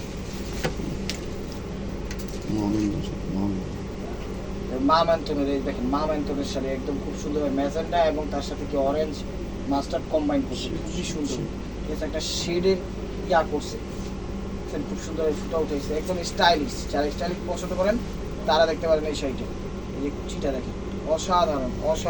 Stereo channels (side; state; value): both; identical; correlation 1.00